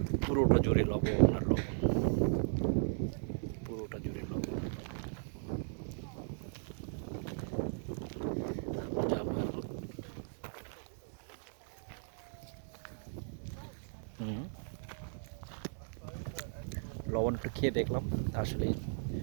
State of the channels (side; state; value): left; silent; 53 dB below the other